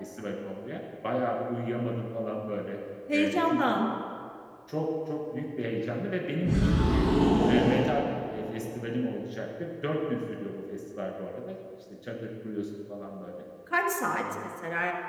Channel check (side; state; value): both; identical; correlation 1.00